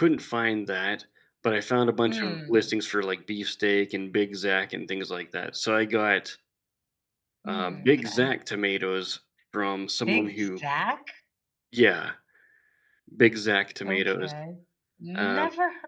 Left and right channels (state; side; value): identical; both; correlation 1.00